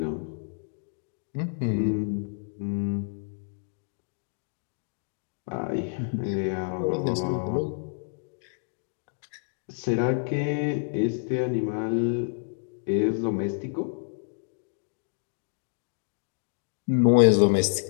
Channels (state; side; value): silent; right; digital silence